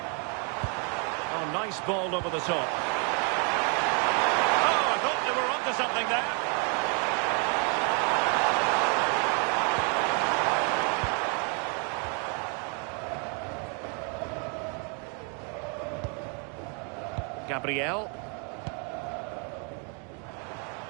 Oh, nice ball over the top. Oh, I thought they were onto something there. Gabriel.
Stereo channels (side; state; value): left; quieter; 37.3 dB